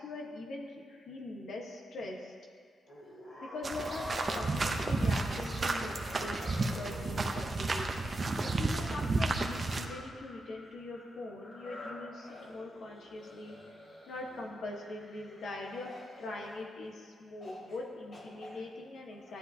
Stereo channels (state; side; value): normal; both; correlation 0.86